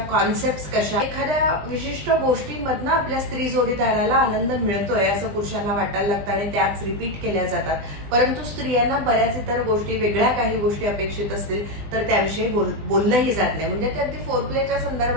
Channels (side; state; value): left; late; 20 ms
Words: कशा, एखाद्या विशिष्ट गोष्टींमधनं आपल्या स्त्री जोडीदाराला आनंद मिळतोय असं पुरुषांना वाटायला लागतं आणि त्याच रिपीट केल्या जातात. परंतु स्त्रियांना बऱ्याच इतर गोष्टी, वेगळ्या काही गोष्टी अपेक्षित असतील तर त्याविषयी बोललंही जात नाही. म्हणजे ते अगदी फोरप्लेच्या